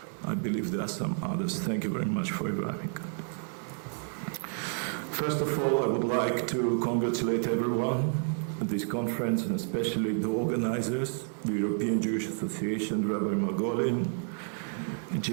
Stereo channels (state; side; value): silent; left; 58 dB below the other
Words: I believe there are some others. Thank you very much for arriving. First of all, I would like to congratulate everyone at this conference, and especially the organizers, the European Jewish Association, Rabbi Margolin, and